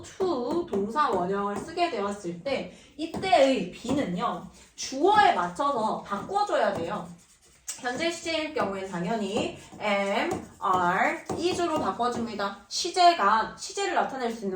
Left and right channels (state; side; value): identical; both; correlation 1.00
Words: to 동사 원형을 쓰게 되었을 때 이때의 be는요 주어에 맞춰서 바꿔줘야 돼요. 현재 시제일 경우에는 당연히 am, are, is로 바꿔줍니다. 시제를 나타낼 수